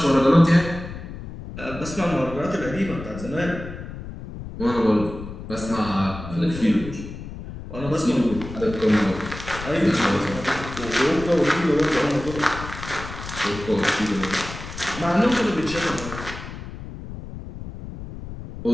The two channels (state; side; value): noise; left; rumble, 11 dB below the sound